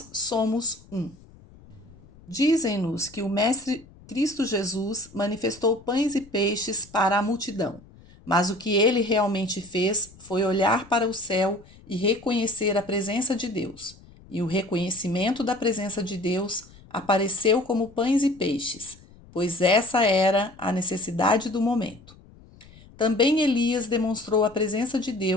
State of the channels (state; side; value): noise; left; rumble, 23 dB below the sound